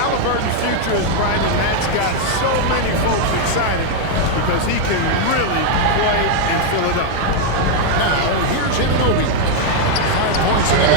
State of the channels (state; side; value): different; both; correlation 0.00